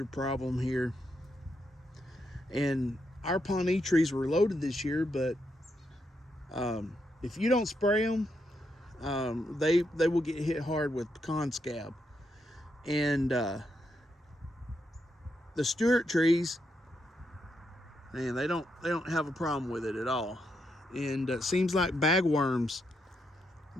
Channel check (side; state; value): both; normal; correlation 0.81